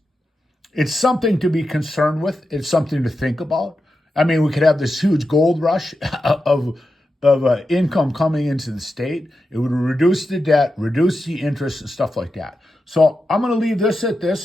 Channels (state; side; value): normal; both; correlation 0.89